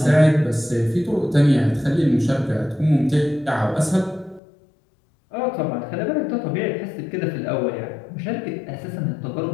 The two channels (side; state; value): right; drops out; at 4.4 s